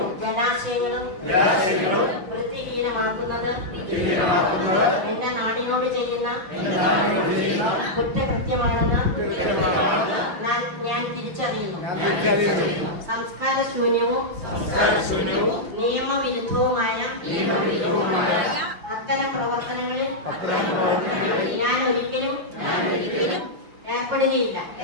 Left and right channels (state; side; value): late; left; 6.1 ms